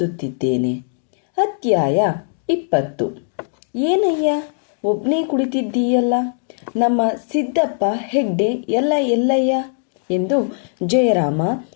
ಅಧ್ಯಾಯ 20. ಏನಯ್ಯ ಒಬ್ನೇ ಕುಳಿತಿದ್ದೀಯಲ್ಲ, ನಮ್ಮ ಸಿದ್ದಪ್ಪ ಹೆಗ್ಡೆ ಎಲ್ಲಯ್ಯ ಎಂದು ಜಯರಾಮ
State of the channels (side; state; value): right; silent; digital silence